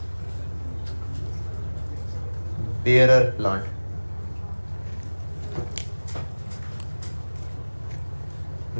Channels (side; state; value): both; inverted; correlation -1.00